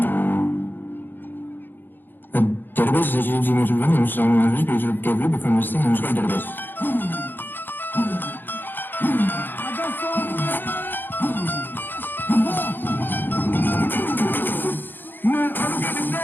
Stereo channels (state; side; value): late; right; 0.094 ms